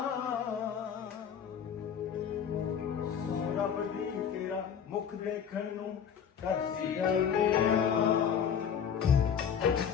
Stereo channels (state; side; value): quieter; right; 7.8 dB